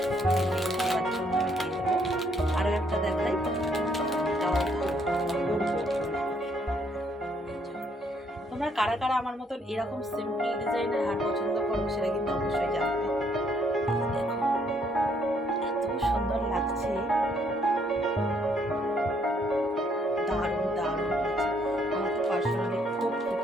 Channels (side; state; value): both; normal; correlation 0.68